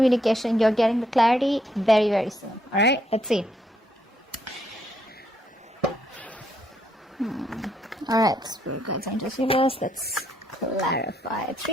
You're getting the clarity very, very soon. All right. Let's see. All right. Spirit guides and receivers. Let's clarify.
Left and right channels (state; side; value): normal; both; correlation 0.73